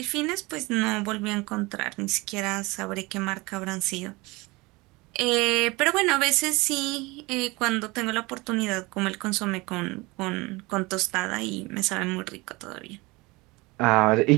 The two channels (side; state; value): left; quieter; 23.6 dB